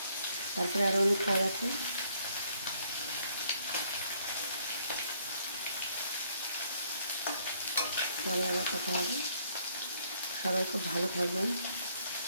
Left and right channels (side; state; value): both; inverted; correlation -0.67